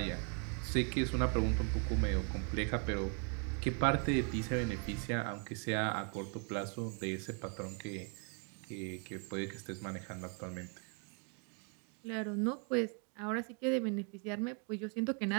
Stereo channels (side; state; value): left; quieter; 39.0 dB